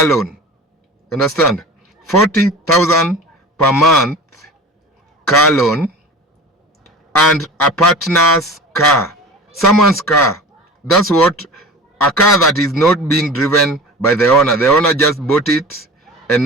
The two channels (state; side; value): normal; both; correlation 0.36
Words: loan. Understand? 40,000 per month car loan, and a partner's car, someone's car. That's what, a car that is not being driven by the owner. The owner just bought it and